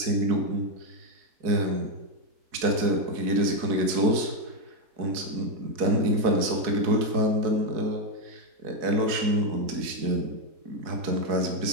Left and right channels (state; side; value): late; left; 4.6 ms